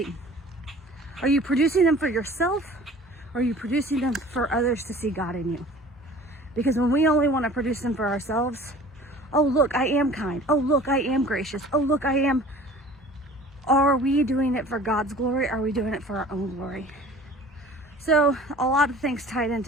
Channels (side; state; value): both; normal; correlation 0.46